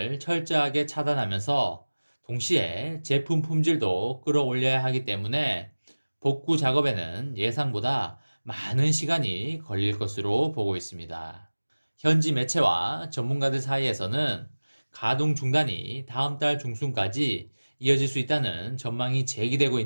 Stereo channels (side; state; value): both; inverted; correlation -1.00